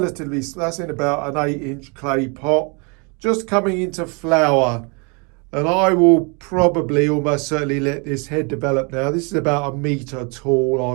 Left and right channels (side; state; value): left; quieter; 32.8 dB